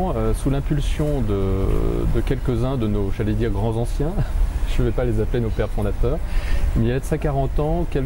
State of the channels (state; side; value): identical; both; correlation 1.00